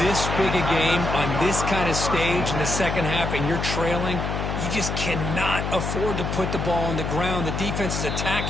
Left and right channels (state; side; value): noise; left; hum, 3 dB below the sound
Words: big a game on this kind of stage in the second half and you're trailing, you just cannot afford to put the ball on the ground. The defense is